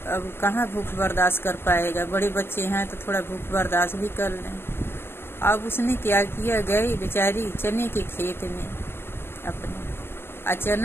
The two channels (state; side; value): late; right; 0.11 ms